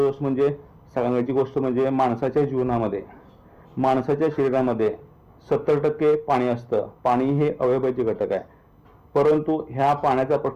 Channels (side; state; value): both; identical; correlation 1.00